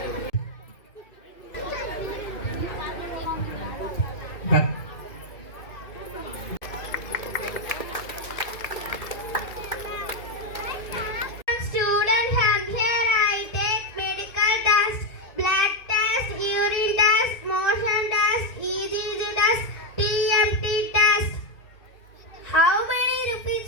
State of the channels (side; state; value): right; late; 1.7 ms